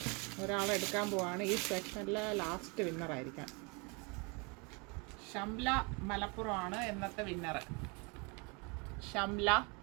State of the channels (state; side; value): quieter; left; 30.8 dB